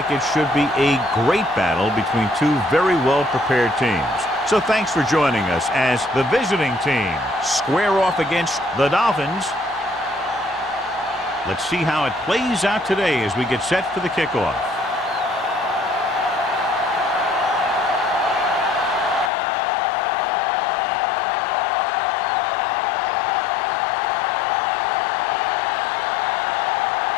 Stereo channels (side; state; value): right; drops out; at 19.3 s